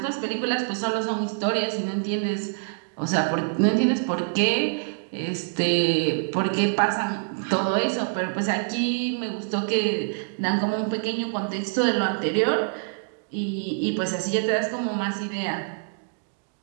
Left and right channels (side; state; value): left; silent; digital silence